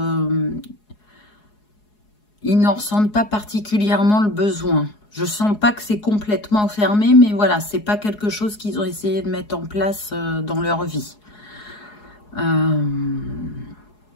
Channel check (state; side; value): late; right; 4.8 ms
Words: ils n'en ressentent pas particulièrement le besoin. Je sens pas que c'est complètement fermé, mais voilà, c'est pas quelque chose qu'ils ont essayé de mettre en place dans leur vie.